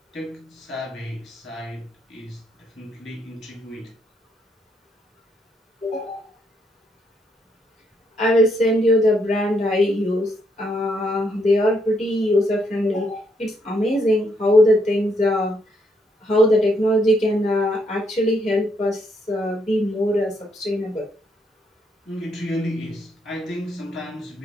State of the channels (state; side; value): normal; both; correlation 0.75